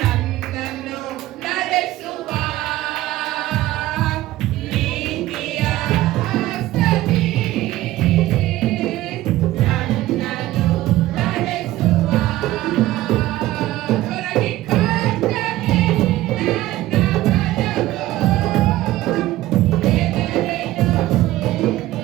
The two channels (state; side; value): quieter; left; 16.0 dB